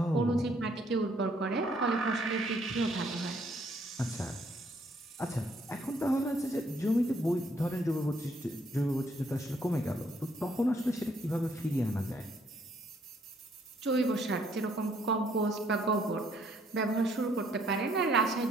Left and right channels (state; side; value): normal; both; correlation 0.67